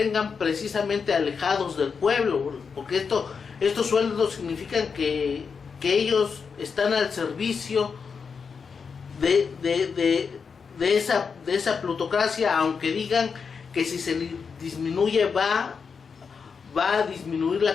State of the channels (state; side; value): quieter; right; 5.7 dB